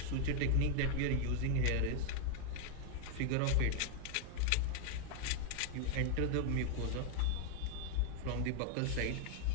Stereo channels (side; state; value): both; different; correlation 0.00